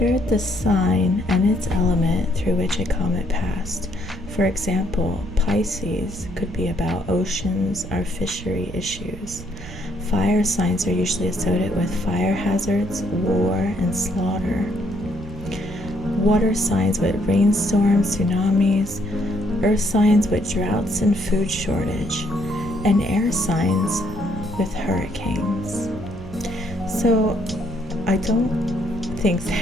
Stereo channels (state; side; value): noise; right; rumble, 13 dB below the sound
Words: the sign and its element through which a comet passed. For example, Pisces could be about oceans or fishery issues. Fire signs are usually associated with fire hazards, war, and slaughter. Water signs with rainstorms, tsunamis. Earth signs with droughts and food shortage. And air signs with hurricanes. So I don't think